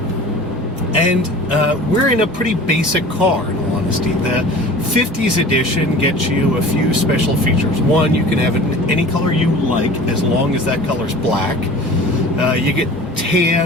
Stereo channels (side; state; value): both; normal; correlation 0.41